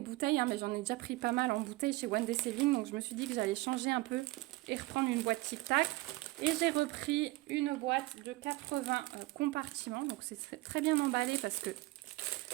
hein, mais j'en ai déjà pris pas mal en bouteilles chez One Day Saving. Donc je me suis dit que j'allais changer un peu et reprendre une boîte Tic Tac. Et j'ai repris une boîte de 80 compartiments. Donc c'est très bien emballé parce que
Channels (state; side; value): quieter; left; 20.5 dB